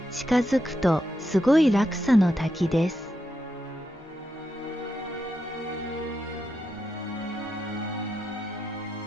近づくとすごい落差の滝です。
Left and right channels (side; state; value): both; normal; correlation 0.85